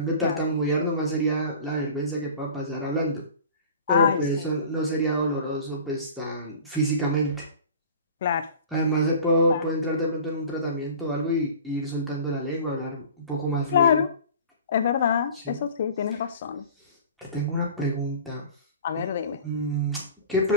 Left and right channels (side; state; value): both; inverted; correlation -0.41